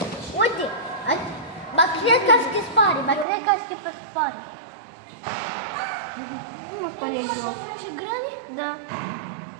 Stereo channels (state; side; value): drops out; left; at 3.2 s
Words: uite. Ba cred că se spare, pe spare. Nu spune joc. Ce grăni? Da.